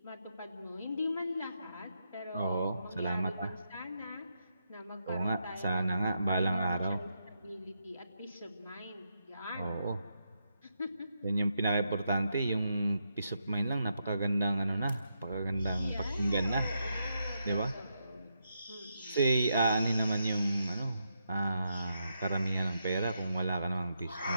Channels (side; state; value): both; inverted; correlation -0.82